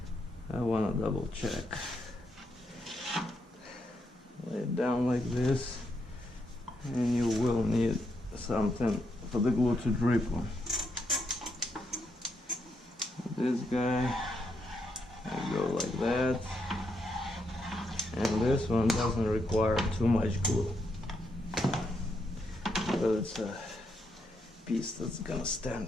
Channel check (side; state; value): both; normal; correlation 0.79